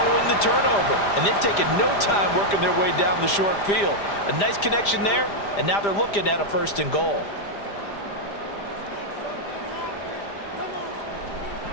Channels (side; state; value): right; late; 5.0 ms